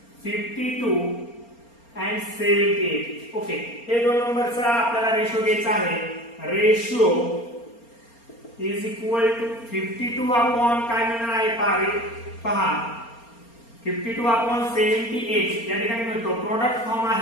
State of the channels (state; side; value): late; right; 4.3 ms